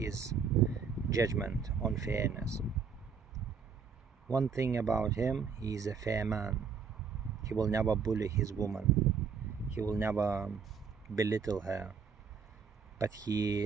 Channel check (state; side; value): quieter; left; 6.0 dB